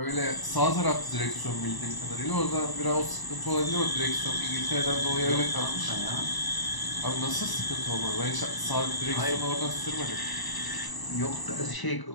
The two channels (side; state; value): right; late; 1.0 ms